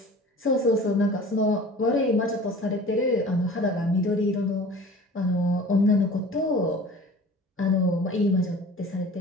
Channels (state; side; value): normal; both; correlation 0.42